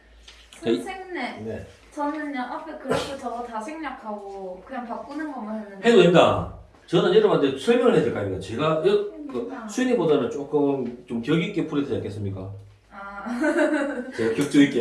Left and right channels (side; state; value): both; identical; correlation 1.00